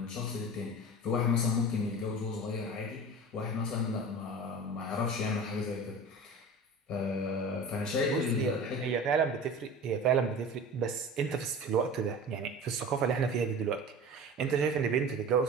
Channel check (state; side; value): normal; both; correlation 0.35